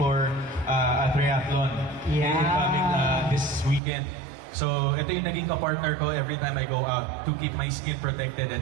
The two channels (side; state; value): left; drops out; at 3.8 s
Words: a triathlon coming this weekend. So ito yung naging ka-partner ko every time I go out to keep my skin protected